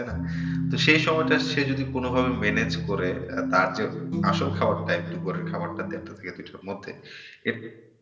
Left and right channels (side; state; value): both; identical; correlation 1.00